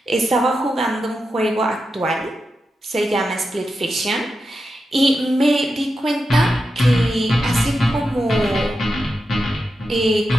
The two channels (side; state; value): both; normal; correlation 0.89